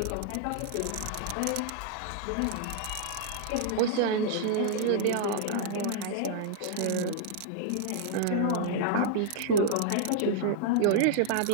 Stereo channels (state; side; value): different; both; correlation -0.01